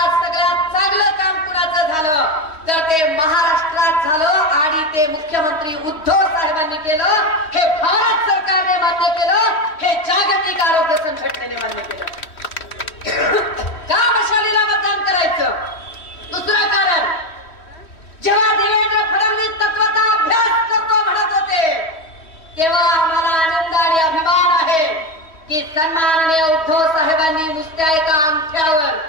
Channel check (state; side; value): late; right; 3.1 ms